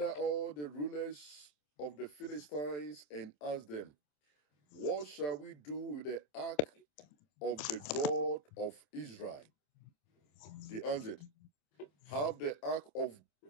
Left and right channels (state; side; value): late; right; 27 ms